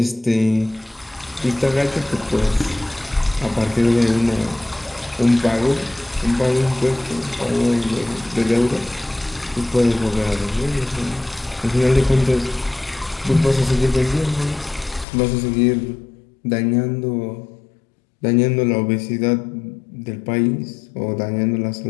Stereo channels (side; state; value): right; drops out; at 15.1 s